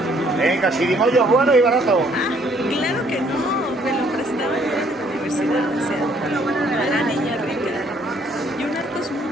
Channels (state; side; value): normal; both; correlation 0.64